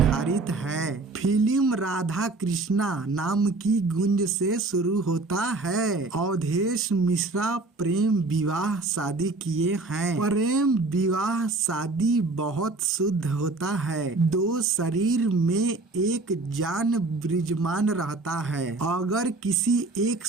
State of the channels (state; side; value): quieter; left; 3.4 dB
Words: है। फिल्म राधा कृष्णा नाम की गुंज से शुरू होता है। अवधेश मिश्रा प्रेम विवाह शादी किए हैं। प्रेम विवाह शादी बहुत शुद्ध होता है। दो शरीर में एक जान विराजमान रहता है। अगर किसी एक